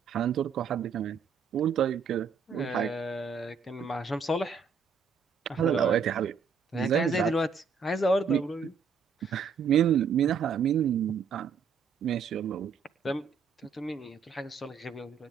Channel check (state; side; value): quieter; left; 5.8 dB